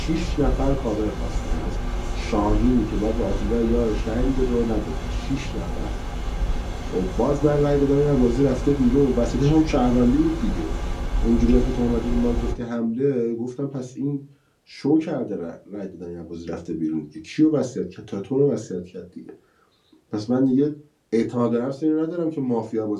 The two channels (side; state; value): both; identical; correlation 1.00